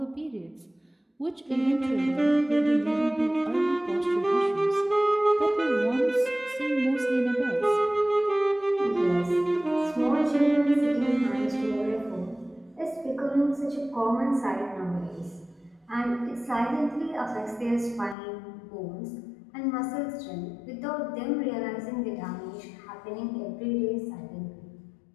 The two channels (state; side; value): drops out; right; at 18.2 s